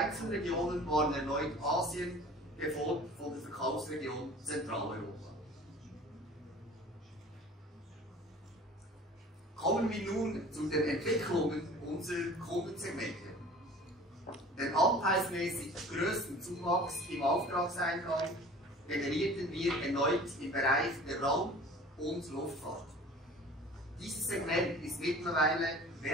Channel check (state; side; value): normal; both; correlation 0.45